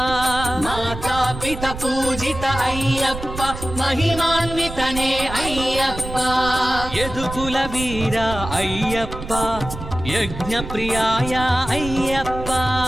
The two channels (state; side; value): noise; right; rumble, 9 dB below the sound